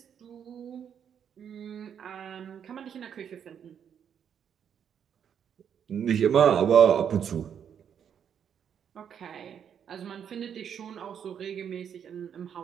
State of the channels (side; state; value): left; quieter; 8.3 dB